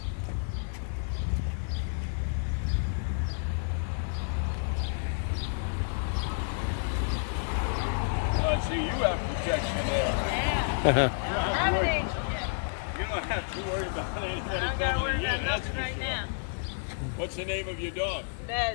See, you have protection there. Yeah. You don't have to worry about anybody. I don't got to worry about nothing right now. What's the name of your dog?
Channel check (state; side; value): silent; right; 58 dB below the other